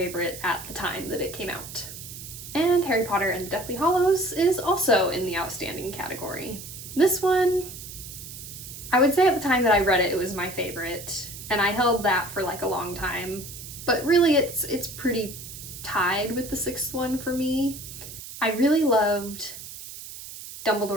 at the time that it came out. And Harry Potter and the Deathly Hallows is also in the outstanding category. This one, I would say at the time that I read it, it was my favorite. And I held that for like a long time. But really it's pretty tied with the 6th one for me. I really loved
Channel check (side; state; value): right; noise; hiss, 12 dB below the sound